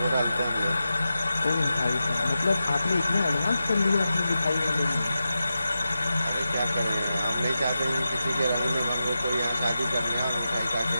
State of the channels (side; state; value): both; inverted; correlation -0.91